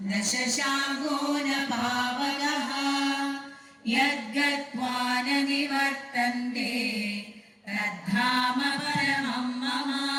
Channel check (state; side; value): identical; both; correlation 1.00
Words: न शशाङ्को न पावकः यद्गत्वा न निवर्तन्ते तद्धाम परमं मम